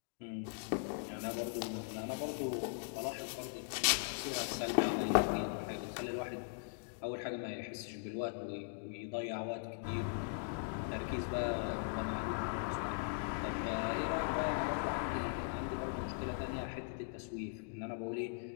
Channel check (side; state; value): right; silent; digital silence